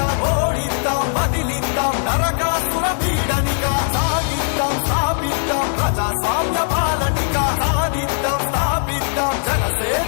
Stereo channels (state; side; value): silent; right; digital silence